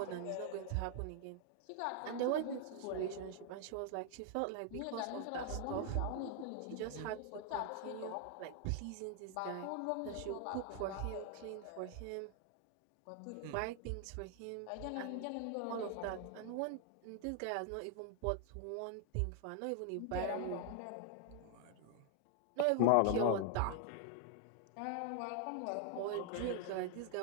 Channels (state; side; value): different; both; correlation 0.00